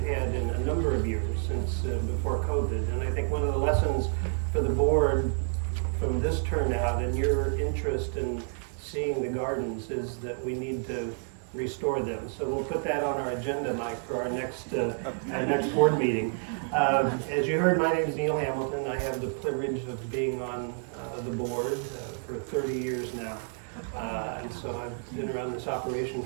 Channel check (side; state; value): left; silent; 58 dB below the other